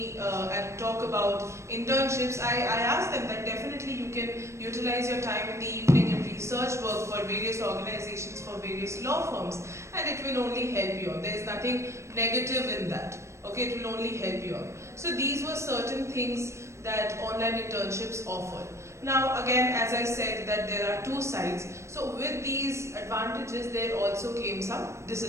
and talk about internships, I ask them that definitely you can utilize your time in the evening in research work for various organizations, for various law firms, and it will only help you out. There is nothing negative in that. Okay, it will only help you out. So these were certain things that online internships offer. Now again, as I said, that there are two sides. So with these advantages, there also came some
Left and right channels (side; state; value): left; late; 0.13 ms